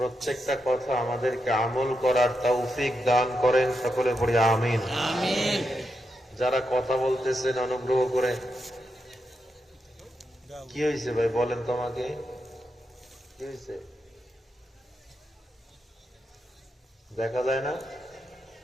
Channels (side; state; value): both; normal; correlation 0.85